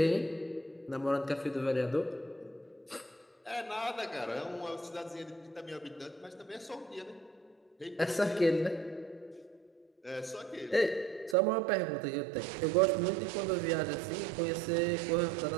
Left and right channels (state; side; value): drops out; left; at 11.4 s